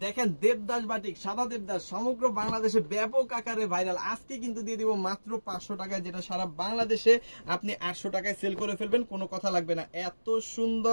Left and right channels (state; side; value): inverted; both; correlation -1.00